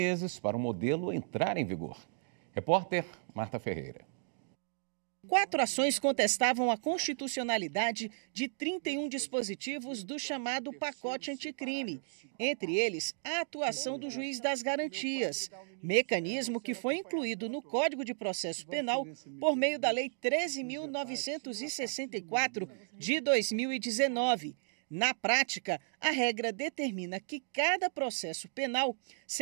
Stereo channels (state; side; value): silent; left; digital silence